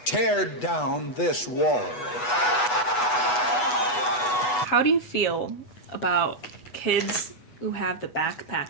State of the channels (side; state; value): right; late; 8.2 ms